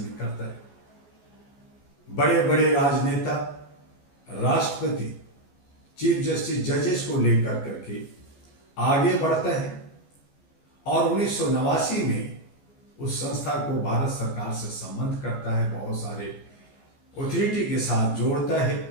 करता है। बड़े बड़े राजनेता, राष्ट्रपति, चीफ जस्टिस, जजेस को लेकर करके आगे बढ़ता है और 1989 में उस संस्था को भारत सरकार से संबंध करता है, बहुत सारे अथॉरिटी के साथ जोड़ता है।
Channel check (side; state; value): right; late; 14 ms